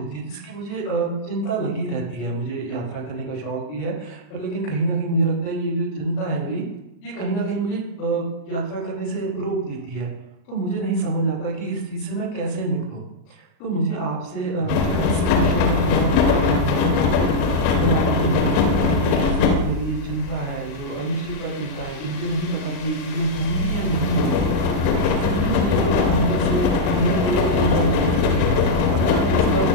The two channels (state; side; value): late; right; 39 ms